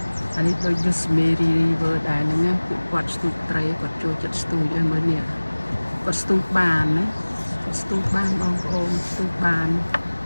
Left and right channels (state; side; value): inverted; both; correlation -1.00